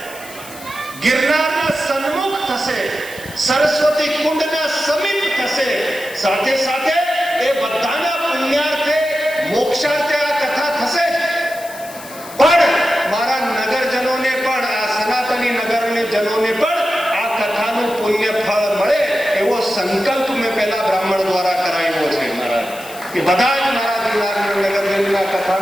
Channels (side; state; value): left; noise; hiss, 16 dB below the sound